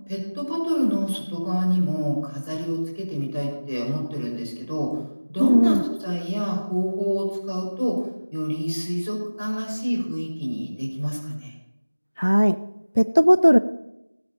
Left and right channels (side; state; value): both; inverted; correlation -1.00